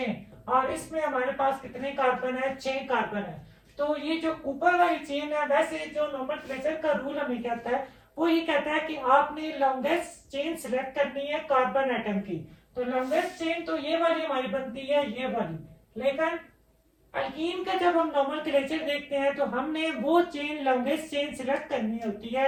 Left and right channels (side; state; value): both; identical; correlation 1.00